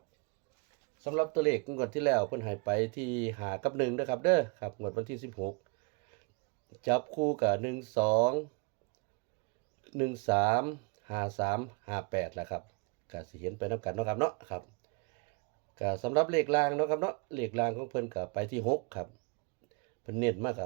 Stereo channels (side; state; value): left; quieter; 31.7 dB